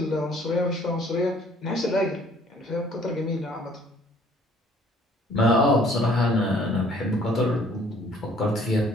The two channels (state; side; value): normal; both; correlation 0.58